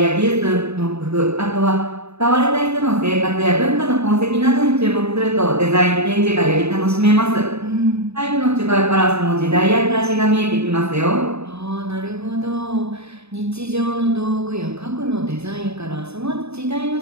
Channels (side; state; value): left; late; 0.79 ms